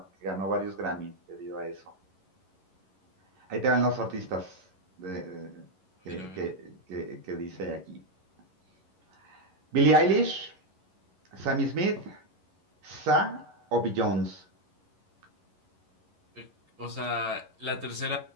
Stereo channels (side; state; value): left; late; 11 ms